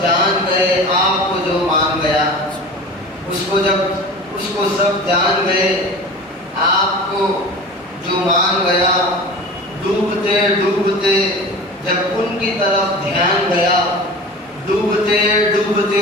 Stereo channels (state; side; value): normal; both; correlation 0.36